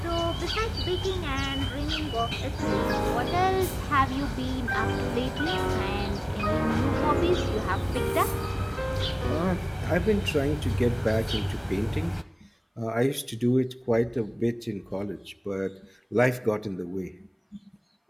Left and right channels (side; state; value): both; identical; correlation 1.00